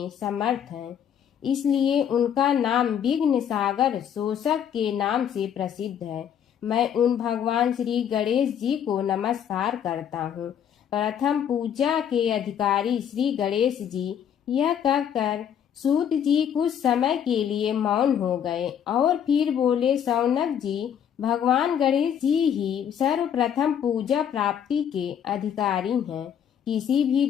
समर्थ हैं। इसलिए उनका नाम विघ्न सागर शोषक के नाम से प्रसिद्ध है। मैं उन भगवान श्री गणेश जी को नमस्कार करता हूँ। प्रथम पूजा के अधिकारी श्री गणेश जी, यह कहकर सूत जी कुछ समय के लिए मौन हो गए और फिर बोले, शौनक जी, भगवान गणेश जी ही सर्वप्रथम पूजा प्राप्ति के अधिकारी हैं। किसी भी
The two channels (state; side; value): quieter; right; 8.9 dB